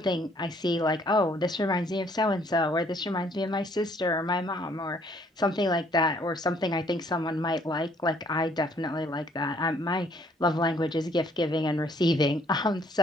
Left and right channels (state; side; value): normal; both; correlation 0.62